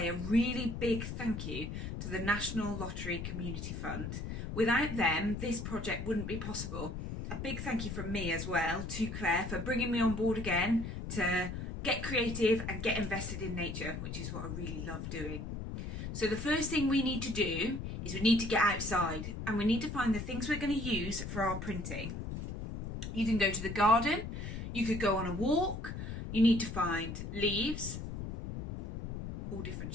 a really big thank you to the National Lottery Community Fund. Without them, this project wouldn't be possible. A big thank you from me as well to Claire for bringing me on board again to get creative and get invested in nature, which is what I really love doing. So the first thing we need to do is we need to get outside and we need to find the things we're going to use for our printing. You can go to the garden, you could go on a walk, you need to find leaves, all different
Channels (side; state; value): left; noise; rumble, 6 dB below the sound